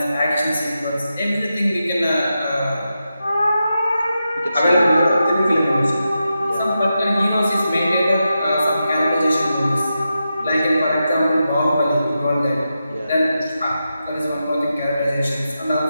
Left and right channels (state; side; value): inverted; both; correlation -0.89